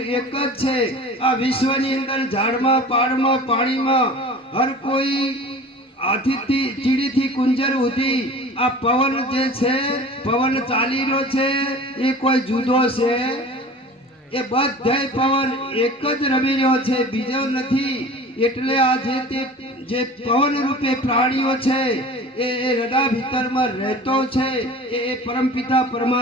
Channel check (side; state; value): both; normal; correlation 0.40